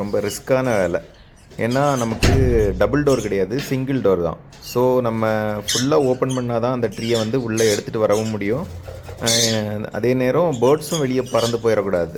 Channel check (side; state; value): both; identical; correlation 1.00